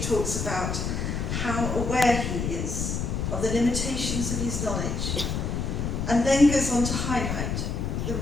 talks about how aware he is of the limitations of his knowledge, and then goes on to highlight the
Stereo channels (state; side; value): noise; left; rumble, 2 dB below the sound